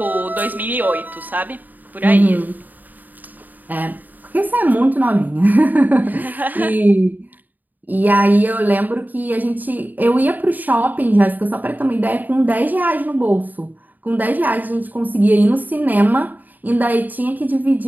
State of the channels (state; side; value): late; left; 0.085 ms